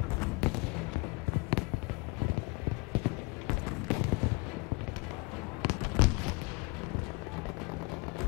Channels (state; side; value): quieter; right; 27.1 dB